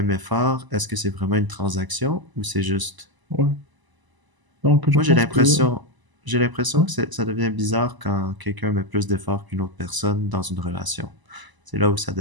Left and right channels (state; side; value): late; left; 1.0 ms